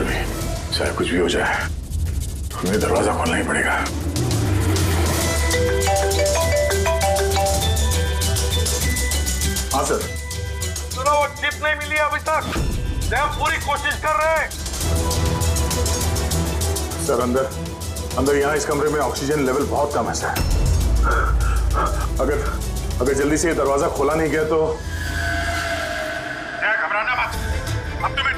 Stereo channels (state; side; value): identical; both; correlation 1.00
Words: चाहे कुछ भी हो जाए हमें दरवाजा खोलना ही पड़ेगा। हाँ सर। सुनो, वो चिप नहीं मिली अभी तक। हम पूरी कोशिश कर रहे हैं। सर अंदर यहाँ इस कमरे में ऑक्सीजन लेवल बहुत कम है सर। अगर जल्दी से ये दरवाजा खोला नहीं गया तो घबराना मत, अब तुम्हें